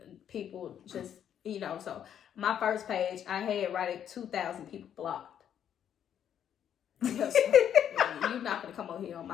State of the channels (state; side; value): quieter; right; 9.4 dB